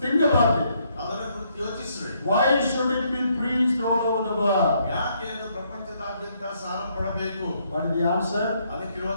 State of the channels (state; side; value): inverted; both; correlation -0.72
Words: Think about it. ಅದರ ಕುರಿತು ಯೋಚಿಸ್ರಿ. Why should it be preached all over the world? ಯಾಕೆ ಅದು ಪ್ರಪಂಚದಾದ್ಯಂತ ಸಾರಲ್ಪಡಬೇಕು? What is the answer?